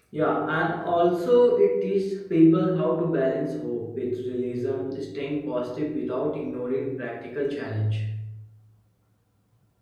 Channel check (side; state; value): both; identical; correlation 1.00